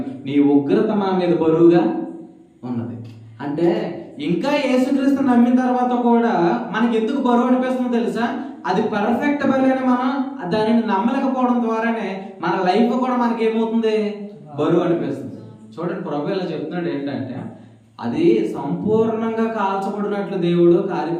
నీ ఉగ్రత మా మీద బరువుగా ఉన్నది. అంటే ఇంకా యేసుక్రీస్తు నమ్మిన తర్వాత కూడా మనకి ఎందుకు బరువు అనిపిస్తుందో తెలుసా? అది పర్ఫెక్ట్ బలి అని మనం దానిని నమ్మలేకపోవడం ద్వారానే మన లైఫ్ కూడా మనకి ఏమవుతుంది? బరువు అనిపిస్తుంది. చూడండి, ప్రభు ఇలా చెప్తున్నాడు ఏంటంటే అది సంపూర్ణంగా కాల్చబడినట్లు దేవుడు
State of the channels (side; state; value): both; identical; correlation 1.00